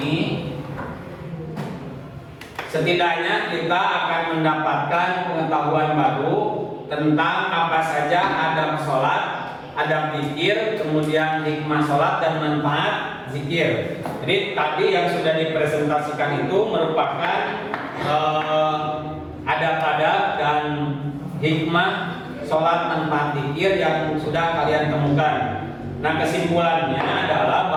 setidaknya kita akan mendapatkan pengetahuan baru tentang apa saja adab sholat, adab zikir, kemudian hikmah sholat dan manfaat zikir. Jadi tadi yang sudah dipresentasikan itu merupakan adab-adab dan hikmah sholat manfaat zikir yang sudah kalian temukan. Nah, kesimpulannya adalah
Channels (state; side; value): identical; both; correlation 1.00